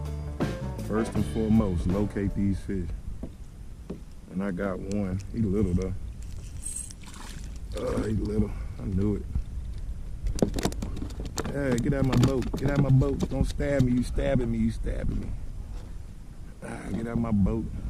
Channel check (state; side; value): identical; both; correlation 1.00